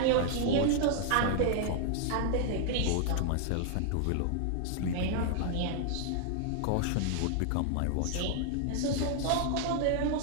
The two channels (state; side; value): different; both; correlation -0.01